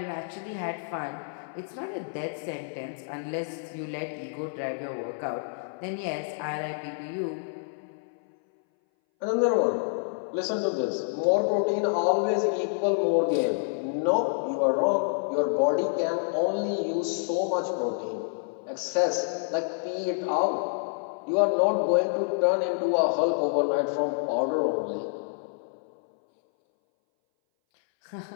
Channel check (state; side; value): silent; right; 59 dB below the other